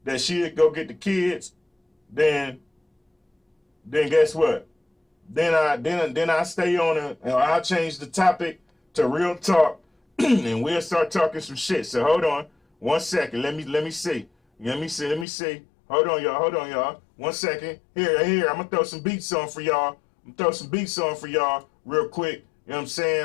that she'll go get the kids, then guess what? Then I stay on it and I'll change the topic to real talk and we'll start talking some shit. So hold on 1 second. Let me see. Hold on, y'all. 1 second. Here. I'm gonna throw some beats on for y'all. Real quick. You know what I'm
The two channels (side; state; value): right; drops out; at 15.2 s